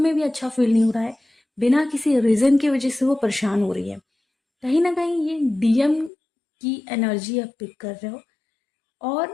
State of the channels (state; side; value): drops out; right; at 6.1 s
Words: भी अच्छा फील नहीं हो रहा है, बिना किसी रीज़न की वजह से वो परेशान हो रही है। कहीं ना कहीं ये डीएम की एनर्जी आप पिक कर रहे हो,